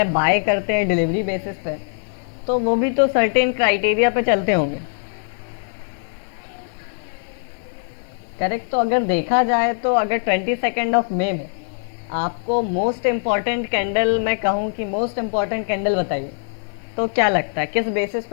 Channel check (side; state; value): right; silent; 64 dB below the other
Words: बाय करते हैं डिलीवरी बेसिस पे, तो वो भी तो सर्टेन क्राइटेरिया पे चलते होंगे करेक्ट। तो अगर देखा जाए तो अगर 22 मई में आपको मोस्ट इम्पॉर्टेंट कैंडल, मैं कहूँ कि मोस्ट इम्पॉर्टेंट कैंडल बताइए, तो क्या लगता है किस बेसिस